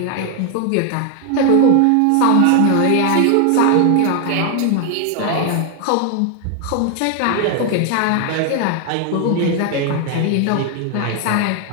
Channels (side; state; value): both; different; correlation 0.00